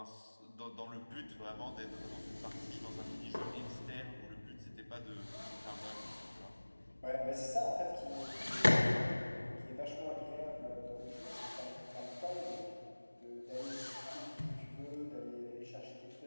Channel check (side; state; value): both; inverted; correlation -1.00